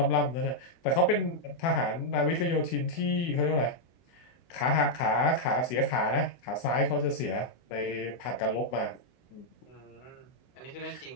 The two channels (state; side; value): late; right; 24 ms